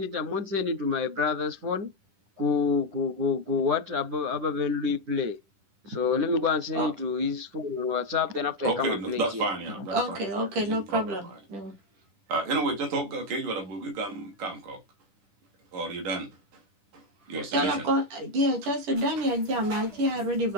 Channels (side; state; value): left; late; 10 ms